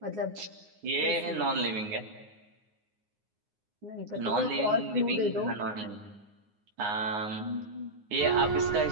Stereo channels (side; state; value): left; late; 9.6 ms